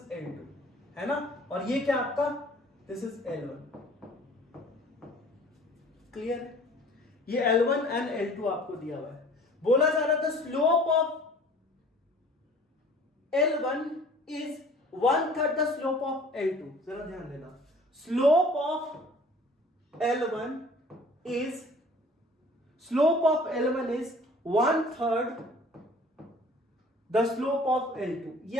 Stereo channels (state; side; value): normal; both; correlation 0.49